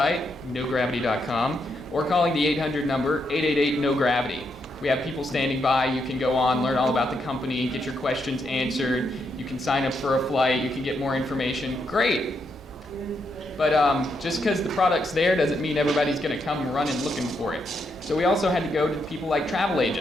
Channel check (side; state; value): both; normal; correlation 0.79